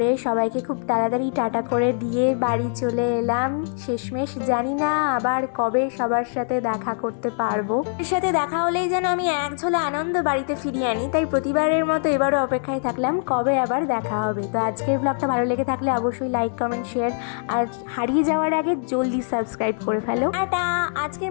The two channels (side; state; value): right; silent; digital silence